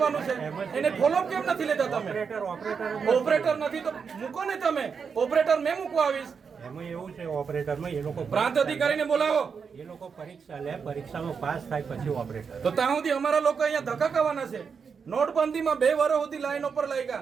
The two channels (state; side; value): quieter; left; 6.0 dB